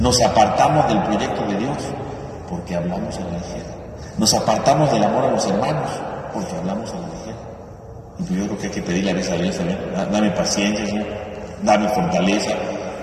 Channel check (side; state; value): both; identical; correlation 1.00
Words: apartamos del proyecto de Dios porque hablamos a la ligera. Nos apartamos del amor a los hermanos porque hablamos a la ligera. Y pues yo creo que hay que pedirle a veces a Dios también, dame paciencia, Señor, dame fortaleza,